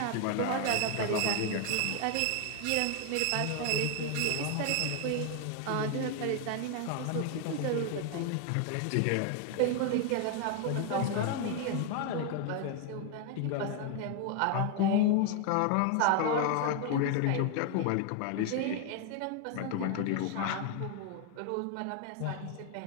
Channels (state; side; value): different; both; correlation 0.00